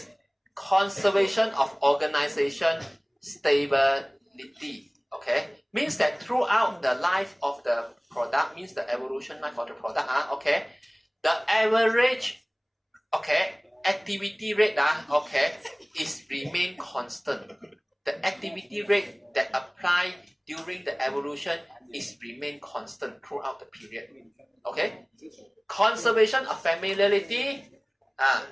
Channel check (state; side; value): identical; both; correlation 1.00